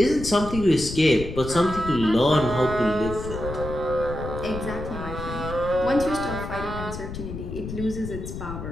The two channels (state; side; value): noise; left; rumble, 8 dB below the sound